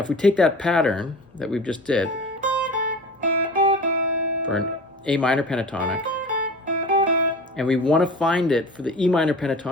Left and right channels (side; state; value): both; normal; correlation 0.36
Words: if we take that pattern that we've just did for an A minor pentatonic, and we want to find it for the E minor